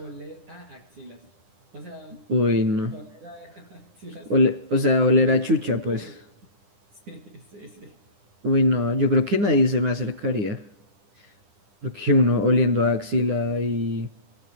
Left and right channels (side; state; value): left; late; 10 ms